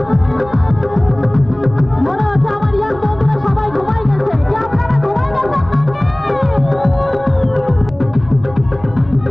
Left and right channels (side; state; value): right; noise; rumble, 19 dB below the sound